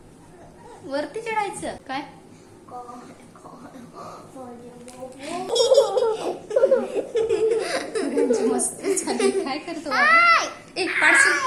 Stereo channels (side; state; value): both; identical; correlation 1.00